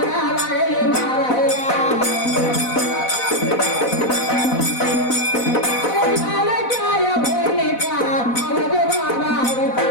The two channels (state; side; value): late; right; 4.0 ms